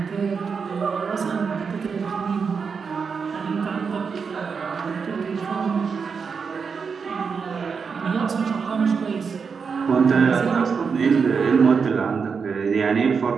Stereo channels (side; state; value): left; quieter; 5.7 dB